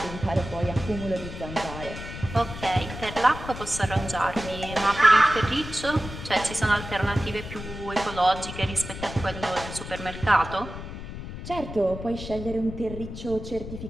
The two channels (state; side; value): noise; left; rumble, 10 dB below the sound